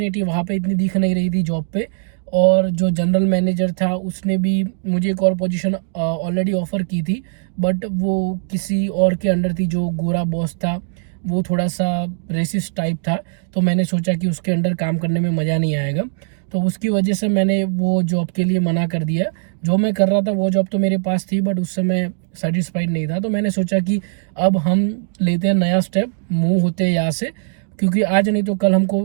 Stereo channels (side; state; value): left; silent; digital silence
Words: वहाँ पे इतनी दिख नहीं रही थी जॉब पे। और जो जनरल मैनेजर था उसने भी मुझे एक और पोजीशन ऑलरेडी ऑफ़र की थी, बट वो किसी और के अंडर थी। जो गोरा बॉस था वो थोड़ा सा रेसिस्ट टाइप था, तो मैंने सोचा कि उसके अंडर काम करने में मज़ा नहीं आएगा। तो उसकी वजह से मैंने वो जॉब के लिए मना कर दिया। जो मैं कर रहा था वो जॉब तो मेरे पास थी, बट उससे मैं सेटिस्फाइड नहीं था। तो मैंने सोचा कि अब हम लेते हैं नया स्टेप, मूव होते हैं यहाँ से, क्योंकि आज नहीं तो कल हमको